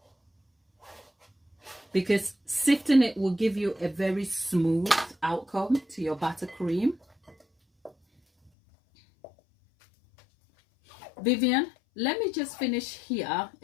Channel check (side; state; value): right; drops out; at 8.5 s